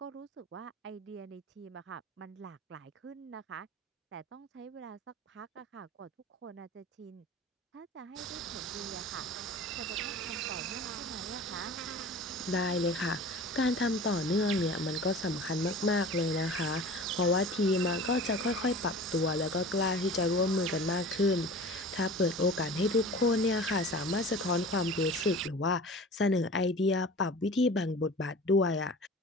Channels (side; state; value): both; normal; correlation 0.39